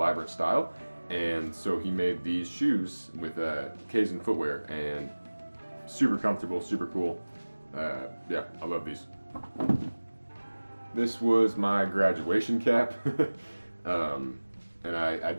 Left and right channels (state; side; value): inverted; both; correlation -1.00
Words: style. And so he made these shoes with Keilan Footwear, and super comfortable, super cool. Yeah, I love these. This was my graduation cap, and I